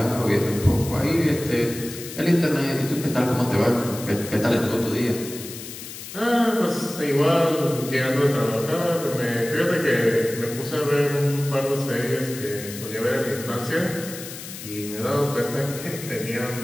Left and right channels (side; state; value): left; noise; hiss, 12 dB below the sound